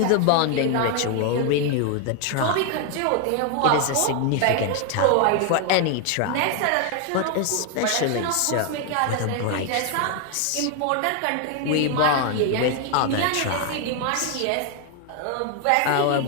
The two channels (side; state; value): both; different; correlation 0.01